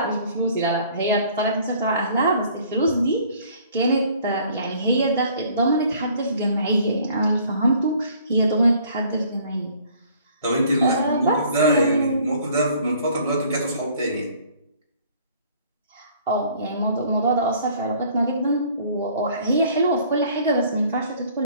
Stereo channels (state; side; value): inverted; both; correlation -0.56